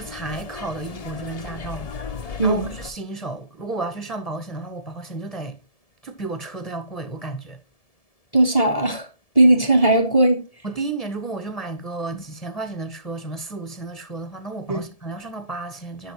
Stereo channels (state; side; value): late; right; 1.7 ms